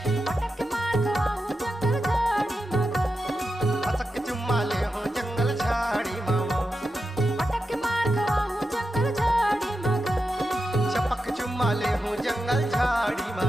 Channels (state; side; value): normal; both; correlation 0.89